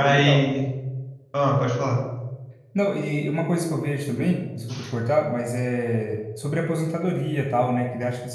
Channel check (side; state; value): both; identical; correlation 1.00